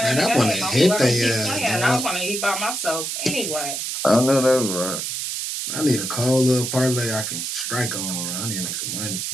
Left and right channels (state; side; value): noise; right; hiss, 3 dB below the sound